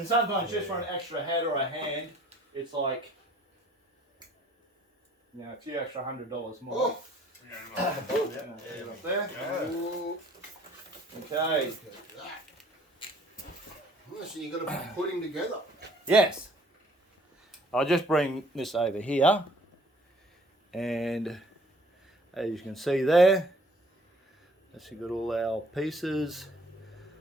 sometimes just for an extra head or a hand, it's like, you know, a few extra $100 more. Oh. Yeah, up there. Ooh, Okay. look at that. Oh, so you've got to be putting together. Yes. I'll just bring this over here. And as you can see there, that's got all our pieces.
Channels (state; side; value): normal; both; correlation 0.56